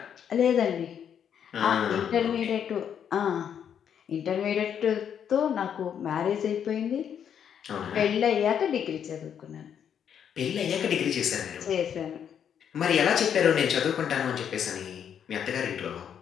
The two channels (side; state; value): right; quieter; 8.5 dB